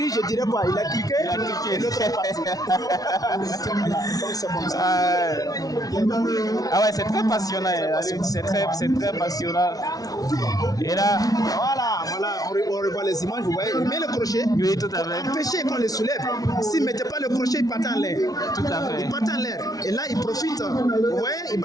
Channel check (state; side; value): late; right; 0.18 ms